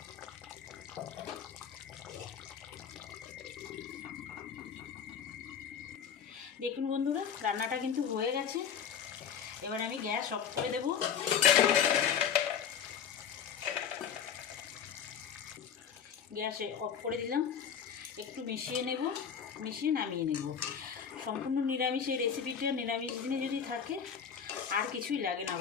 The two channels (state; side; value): quieter; right; 7.7 dB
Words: দেখুন বন্ধুরা রান্নাটা কিন্তু হয়ে গেছে। এবার আমি গ্যাস অফ করে দেব। গ্যাস অফ করে দিলাম, একটু মিশিয়ে নেব, মিশিয়ে নামিয়ে নেব। সম্পূর্ণ নিরামিষ এই রেসিপিটা, নিরামিষ দিনে যদি থাকে আর কিছুই লাগে না,